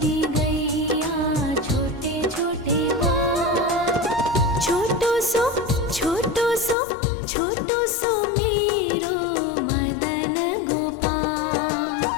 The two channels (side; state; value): right; drops out; at 6.8 s